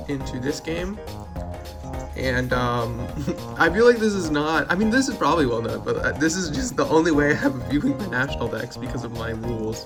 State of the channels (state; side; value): identical; both; correlation 1.00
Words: into this game, and I feel like this is not, I mean, this is probably well known, but this is just the only way I have of viewing the National Dex because of my